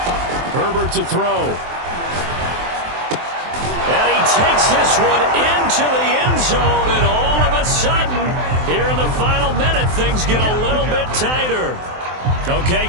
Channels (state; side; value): late; left; 23 ms